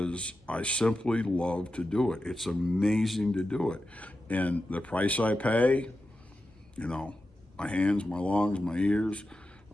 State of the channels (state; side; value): normal; both; correlation 0.91